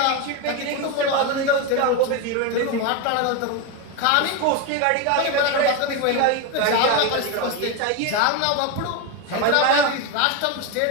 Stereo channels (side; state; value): both; different; correlation 0.03